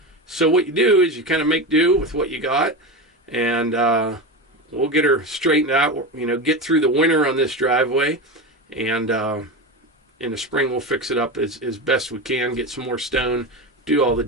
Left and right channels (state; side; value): normal; both; correlation 0.21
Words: So what you do is you kind of make do with what you got, and we'll get her straightened out, get through the winter on this driveway, and in the spring we'll fix it up as best we can, get some more stone, do all the